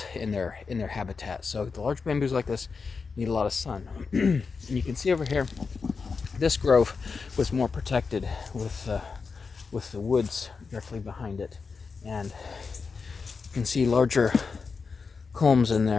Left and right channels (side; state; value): right; quieter; 5.0 dB